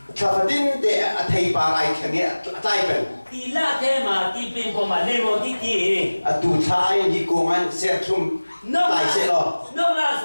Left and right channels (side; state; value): both; inverted; correlation -1.00